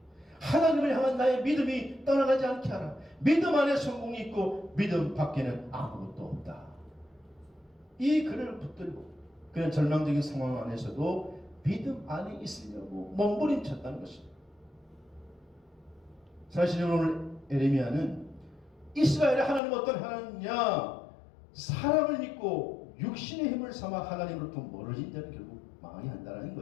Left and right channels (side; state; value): right; drops out; at 19.6 s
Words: 하나님을 향한 나의 믿음이 떠나가지 않게 하라. 믿음 안에 성공이 있고 믿음 밖에는 아무것도 없다. 이 글을 붙들고 그런 절망적인 상황 안에서도 믿음 안에 있으려고 몸부림쳤다는 것입니다. 사실 오늘 에레미야는 이스라엘의 하나님 어떤 하나님이냐, 사람을 믿고 육신의 힘을 삼아 하나님으로부터 멀어진 자는 결국 망하게 한다는